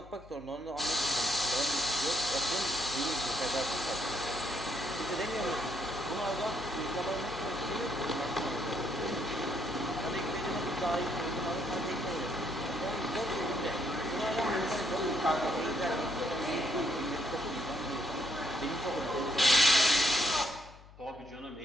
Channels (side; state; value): left; noise; hum, 21 dB below the sound